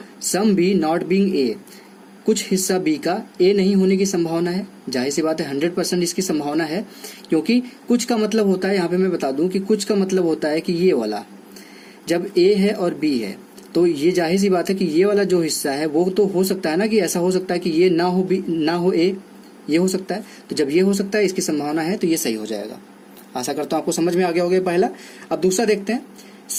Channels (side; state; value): both; identical; correlation 1.00